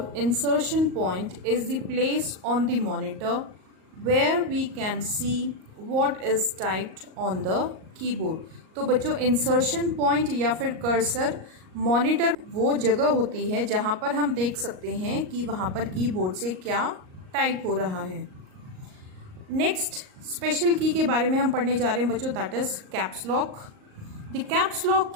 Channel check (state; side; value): late; left; 38 ms